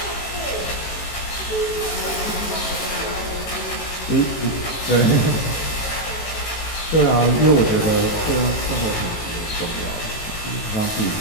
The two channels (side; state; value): right; late; 18 ms